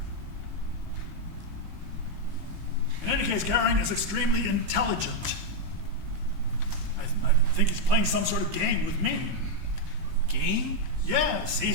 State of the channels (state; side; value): late; left; 18 ms